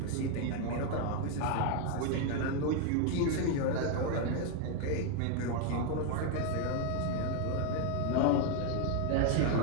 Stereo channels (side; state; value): both; different; correlation 0.01